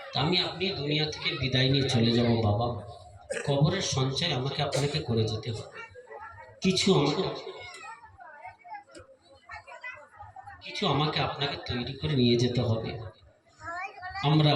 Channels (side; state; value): both; identical; correlation 1.00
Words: আমি আপনি দুনিয়া থেকে বিদায় নিয়ে চলে যাব বাবা, কবরের সঞ্চয় আমাকে আপনাকে করে যেতে হবে। কিছু আমাকে আপনাকে তৈরি করে নিয়ে যেতে হবে। আমরা